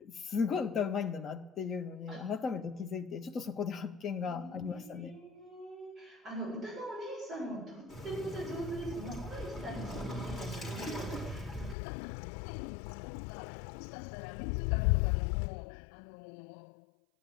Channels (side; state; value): right; drops out; at 11.8 s